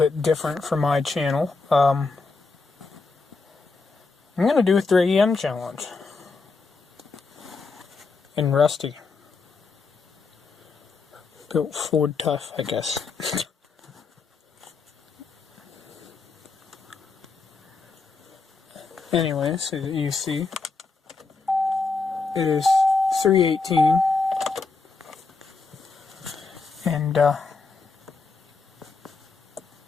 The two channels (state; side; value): quieter; right; 4.2 dB